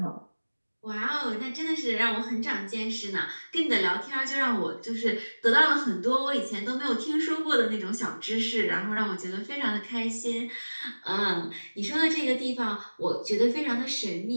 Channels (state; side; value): inverted; both; correlation -1.00